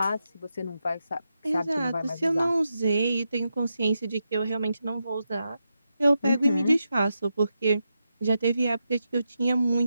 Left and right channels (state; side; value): inverted; both; correlation -0.87